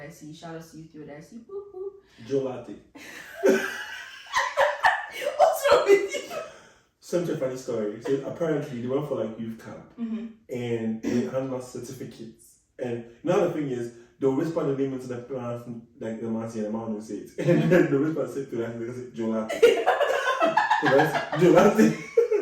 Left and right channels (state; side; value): identical; both; correlation 1.00